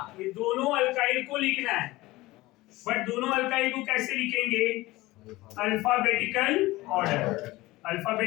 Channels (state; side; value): quieter; right; 19.3 dB